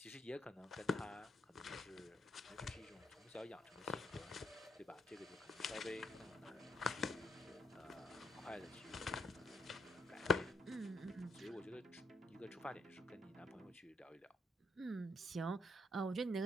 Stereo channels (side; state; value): both; normal; correlation 0.78